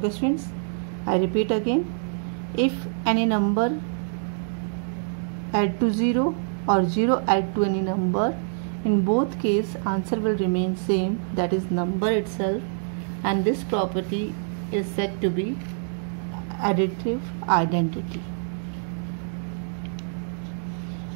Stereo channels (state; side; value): silent; left; digital silence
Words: students, I repeat again, if any number add to 0 or 0 add to any number, in both cases answer will remain same, that is number itself, and this property is said to be additive identity.